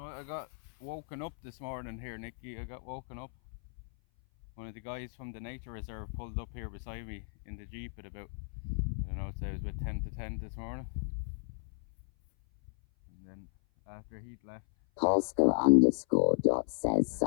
I got woken up this morning here, Nicky. I got woken up. One of the guys from the nature reserve pulled up here beside me in the Jeep at about, I don't know, I'd say it was about 10 to 10 this morning. And then after he'd left, Polska_dot says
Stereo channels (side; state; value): right; silent; 55 dB below the other